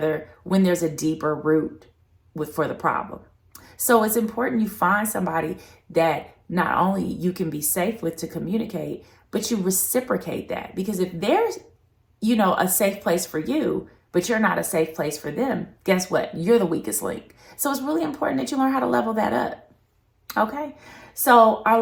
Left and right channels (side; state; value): both; identical; correlation 1.00